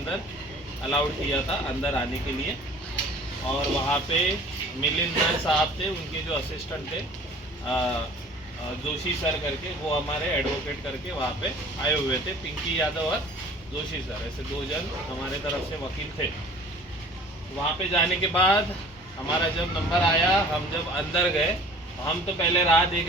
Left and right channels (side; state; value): both; normal; correlation 0.47